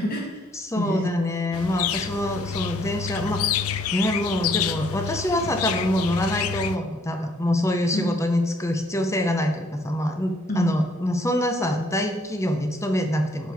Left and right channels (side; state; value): both; normal; correlation 0.65